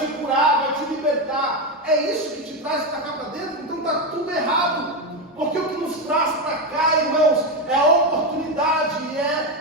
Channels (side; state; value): both; normal; correlation 0.11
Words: curar, vai te libertar. É isso que te traz para cá para dentro? Então está tudo errado. Porque o que nos traz para cá, irmãos, é a oportunidade,